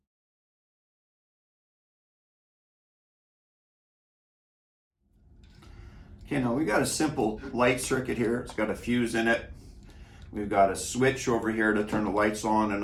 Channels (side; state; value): both; identical; correlation 1.00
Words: Okay, now we've got a simple light circuit here. It's got a fuse in it. We've got a switch over here to turn the lights on and